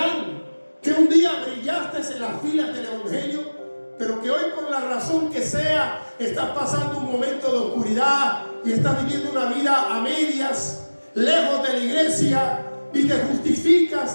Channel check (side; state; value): both; inverted; correlation -1.00